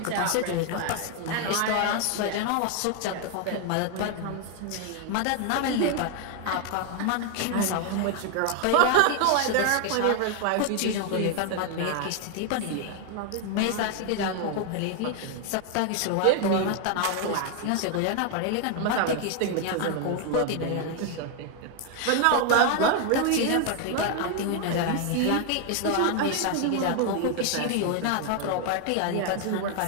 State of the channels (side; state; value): both; different; correlation 0.00